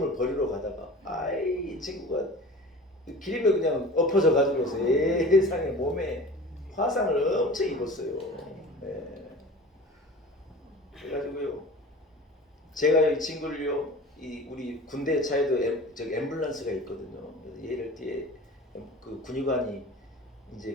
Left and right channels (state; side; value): normal; both; correlation 0.38